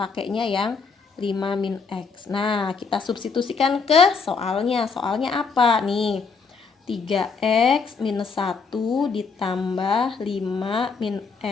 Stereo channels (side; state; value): right; quieter; 5.1 dB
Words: yang 5 min X. Nah, kita substitusikan ke soalnya. Soalnya apa nih? 3x minus 1 ditambah 5 min